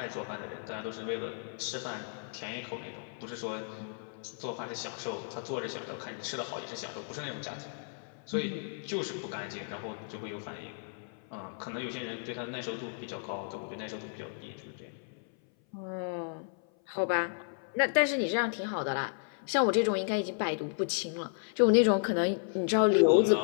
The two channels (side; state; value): right; silent; 55 dB below the other